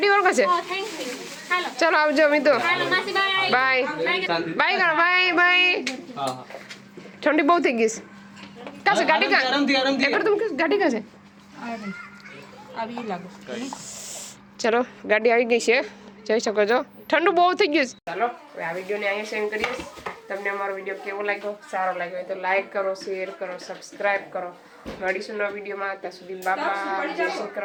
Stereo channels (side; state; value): both; identical; correlation 1.00